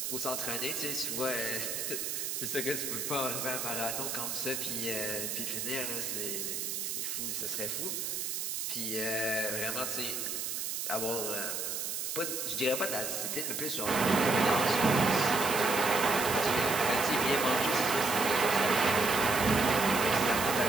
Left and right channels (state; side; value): noise; right; hiss, 3 dB below the sound